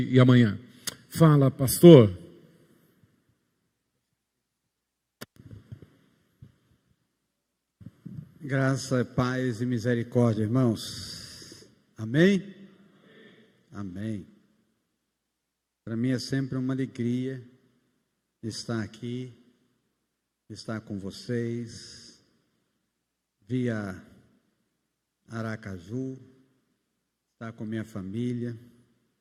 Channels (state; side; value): identical; both; correlation 1.00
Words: e amanhã. Fala, pastor. Graça, paz e misericórdia, irmãos. Amém? Amém. Para mim é sempre uma alegria estar aqui, estar com vocês, via Aracaju, estar com minha família.